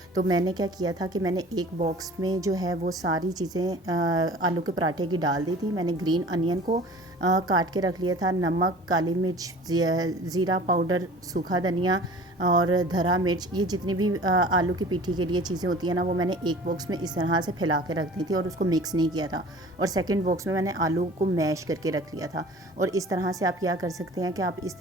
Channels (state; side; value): normal; both; correlation 0.44